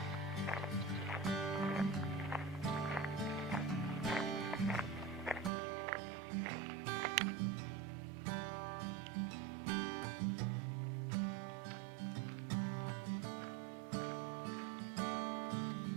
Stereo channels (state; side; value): drops out; left; at 5.5 s